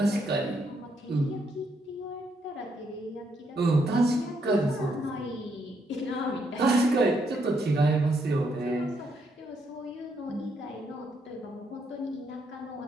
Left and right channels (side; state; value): both; normal; correlation 0.75